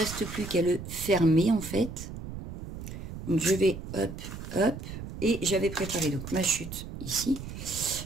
plus qu'à le fermer en fait. Donc je vais hop, hop. Et j'avais préparé donc ma chute ici,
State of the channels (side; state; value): right; noise; rumble, 10 dB below the sound